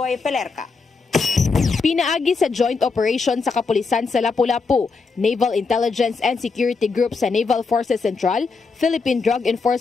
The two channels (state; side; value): quieter; right; 4.5 dB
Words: Pelerca. Pinaagi sa joint operation sa kapulisan sa Lapu-Lapu, Naval Intelligence and Security Group sa Naval Forces Central, Philippine Drug